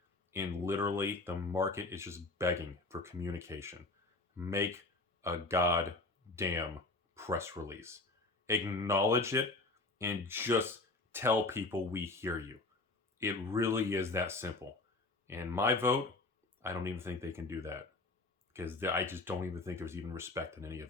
And literally, the market is just begging for communication. Make a goddamn press release. Acknowledge it and just tell people we hear you. It really is that simple. And my vote, I don't even think they can do that, because I just don't even think there's even respect in any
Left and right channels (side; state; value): right; quieter; 3.2 dB